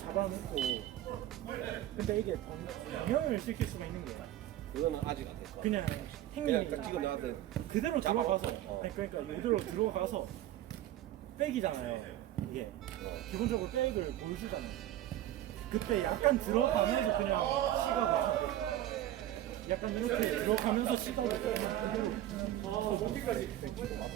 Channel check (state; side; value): quieter; left; 13.3 dB